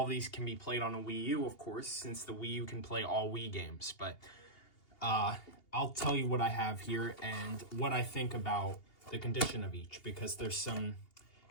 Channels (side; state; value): right; late; 2.8 ms